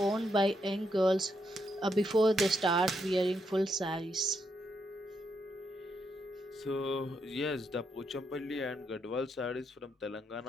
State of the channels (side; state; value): both; normal; correlation 0.79